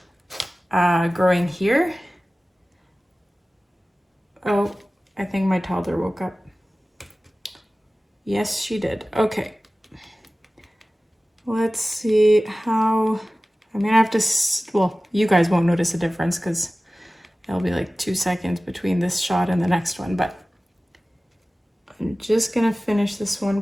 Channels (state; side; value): normal; both; correlation 0.97